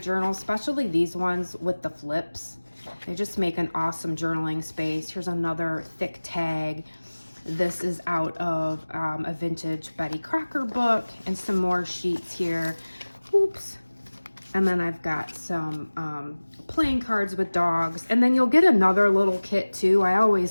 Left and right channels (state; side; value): inverted; both; correlation -1.00